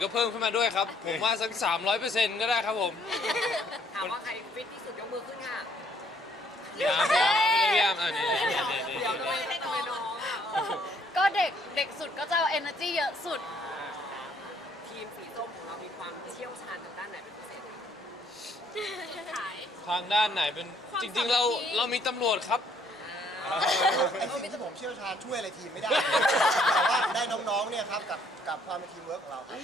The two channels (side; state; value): both; normal; correlation 0.65